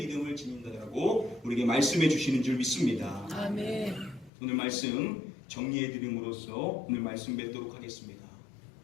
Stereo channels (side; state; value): right; drops out; at 4.3 s